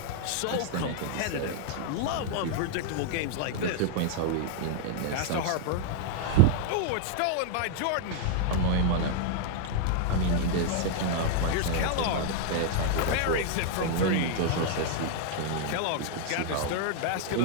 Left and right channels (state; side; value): different; both; correlation -0.01